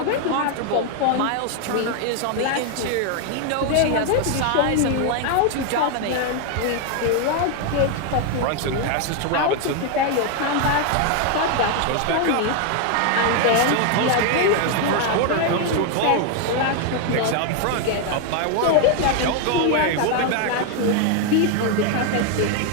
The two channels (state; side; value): different; both; correlation 0.01